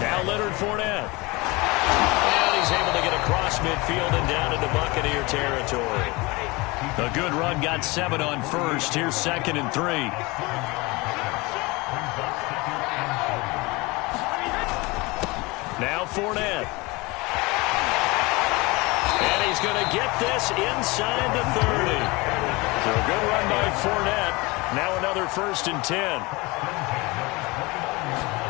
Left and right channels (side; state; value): right; quieter; 24.2 dB